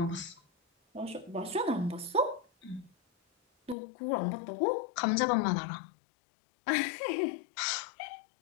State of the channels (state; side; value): drops out; right; at 3.8 s